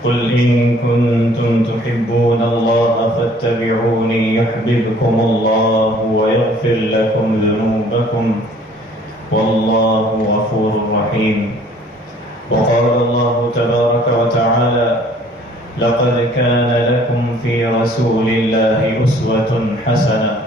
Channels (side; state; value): both; normal; correlation 0.56